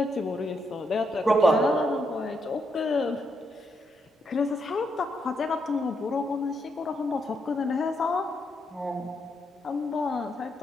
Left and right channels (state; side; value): normal; both; correlation 0.79